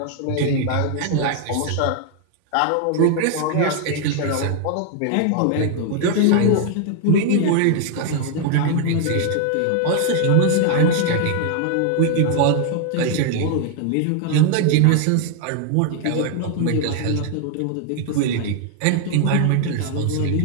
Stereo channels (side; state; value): both; different; correlation 0.00